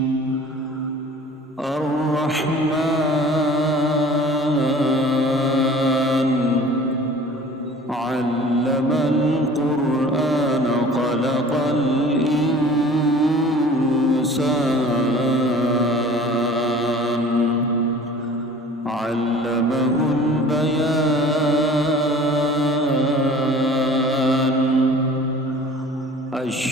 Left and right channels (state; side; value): normal; both; correlation 0.46